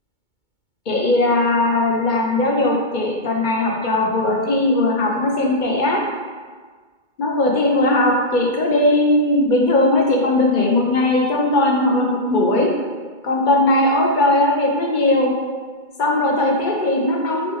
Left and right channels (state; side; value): late; right; 2.2 ms